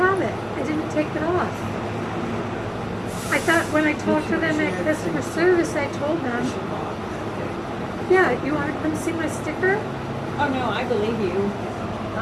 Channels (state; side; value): identical; both; correlation 1.00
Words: it. I didn't take it off. I thought when I talked to them at customer service, I told them, yeah, you want to come see my sticker? Oh no, I believe you.